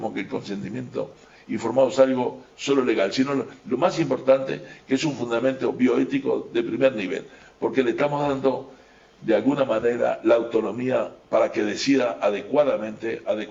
que el consentimiento informado es algo solo legal, sino lo más importante que es un fundamento bioético de primer nivel, porque le estamos dando de alguna manera la autonomía para que decida adecuadamente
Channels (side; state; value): both; identical; correlation 1.00